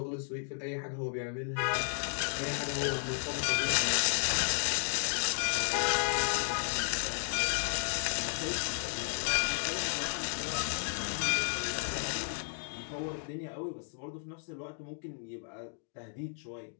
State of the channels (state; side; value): silent; right; digital silence